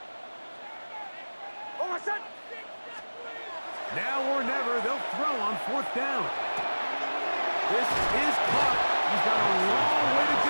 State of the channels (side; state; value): both; inverted; correlation -1.00